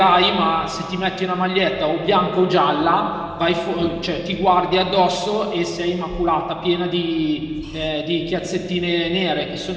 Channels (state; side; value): identical; both; correlation 1.00